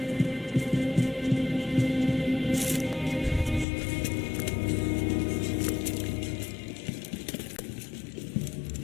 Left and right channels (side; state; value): right; drops out; at 3.7 s